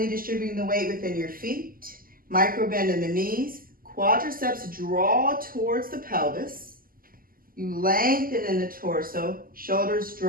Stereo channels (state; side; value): late; left; 0.42 ms